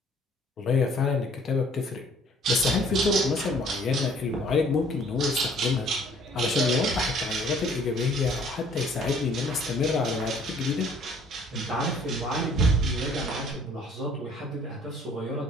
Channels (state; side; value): normal; both; correlation 0.57